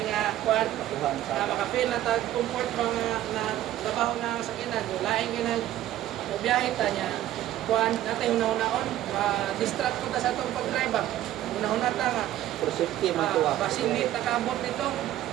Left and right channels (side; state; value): left; quieter; 13.3 dB